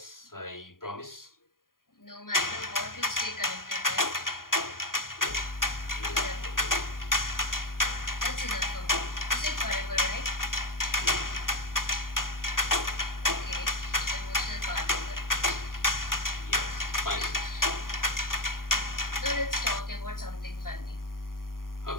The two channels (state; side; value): late; right; 0.91 ms